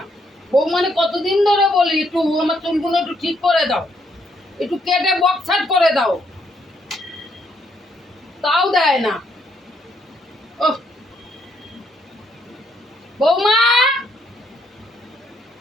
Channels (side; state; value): both; normal; correlation 0.73